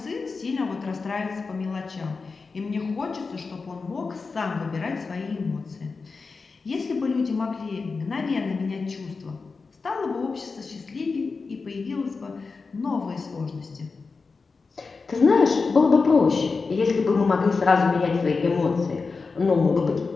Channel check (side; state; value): right; quieter; 4.4 dB